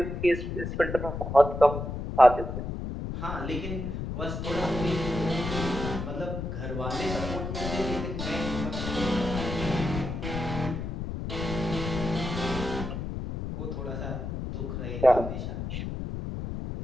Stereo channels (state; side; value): noise; left; rumble, 5 dB below the sound